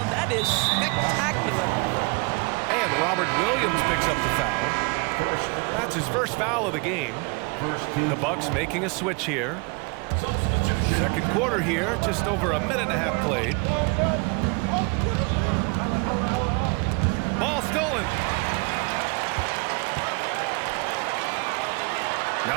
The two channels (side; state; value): left; quieter; 30.5 dB